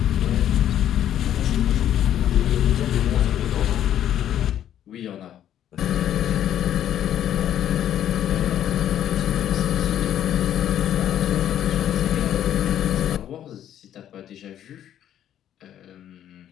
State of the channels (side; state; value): right; quieter; 10.9 dB